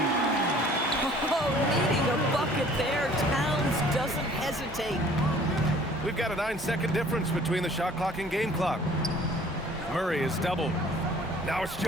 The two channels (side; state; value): both; normal; correlation 0.53